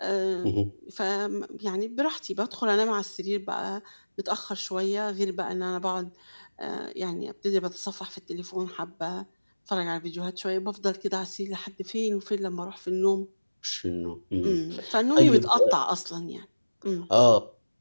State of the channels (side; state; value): both; inverted; correlation -1.00